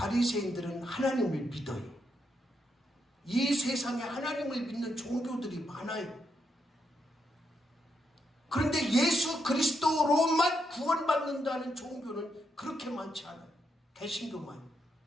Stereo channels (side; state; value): both; normal; correlation 0.80